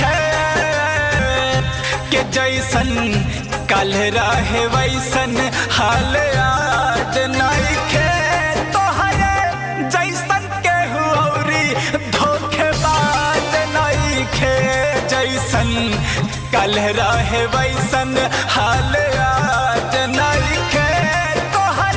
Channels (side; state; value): both; identical; correlation 1.00